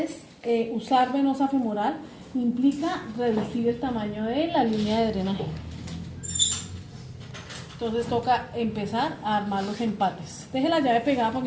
usar venosa femoral implica reducir el tamaño de la línea de drenaje. Entonces toca empezar a armar los empates. Deje la llave pegada para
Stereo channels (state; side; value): identical; both; correlation 1.00